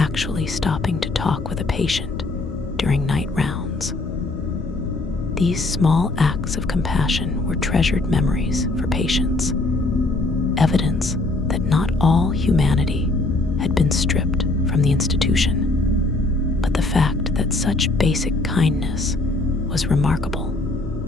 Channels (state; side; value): quieter; right; 3.0 dB